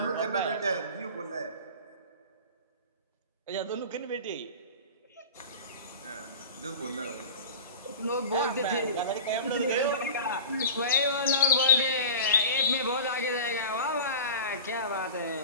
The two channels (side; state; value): both; inverted; correlation -0.34